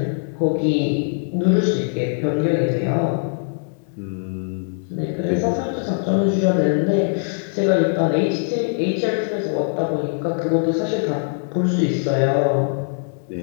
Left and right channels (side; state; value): right; silent; digital silence